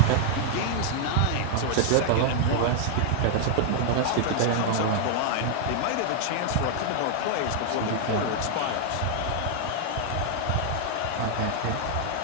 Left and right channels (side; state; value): both; different; correlation 0.00